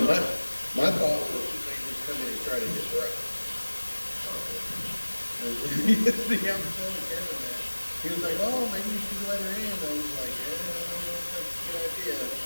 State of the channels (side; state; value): both; inverted; correlation -1.00